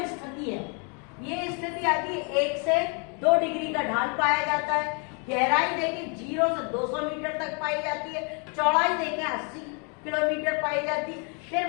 स्थिति है, ये स्थिति आती है 1 से 2 डिग्री का ढाल पाया जाता है। गहराई देखें 0 से 200 मीटर तक पाई जाती है। चौड़ाई देखें 80 किलोमीटर पाई जाती है।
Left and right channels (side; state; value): right; quieter; 36.3 dB